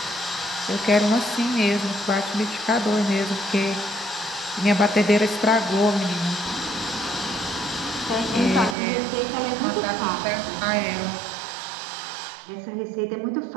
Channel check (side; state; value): left; drops out; at 8.8 s